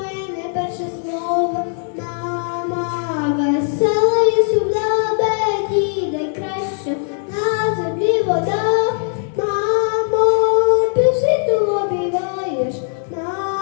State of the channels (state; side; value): silent; right; digital silence